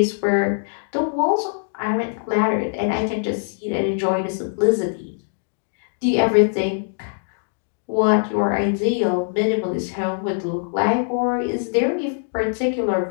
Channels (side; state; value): right; silent; digital silence